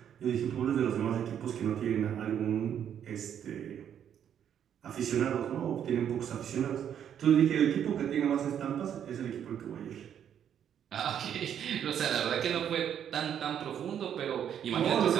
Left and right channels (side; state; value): left; quieter; 9.2 dB